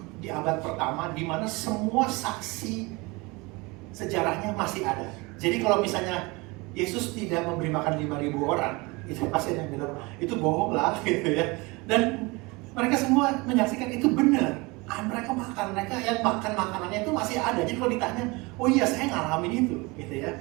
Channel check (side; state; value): left; quieter; 25.2 dB